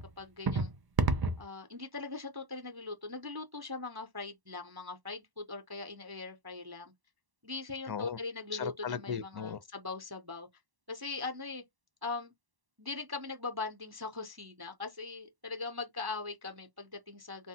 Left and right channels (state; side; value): late; left; 1.1 ms